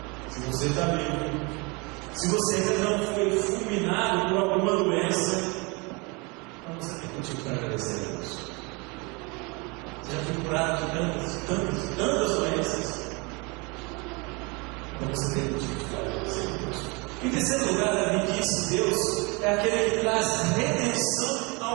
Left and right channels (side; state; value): left; quieter; 28.6 dB